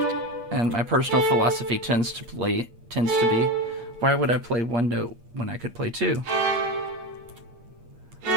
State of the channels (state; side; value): late; left; 8.5 ms